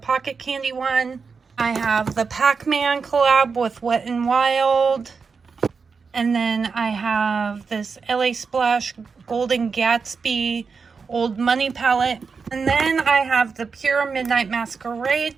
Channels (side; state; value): left; quieter; 5.2 dB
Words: Candy one. I have the Pac-Man collab with Wet n Wild. And then I have this LA Splash Golden Gatsby Old Money palette. And then I have the Pure Midnight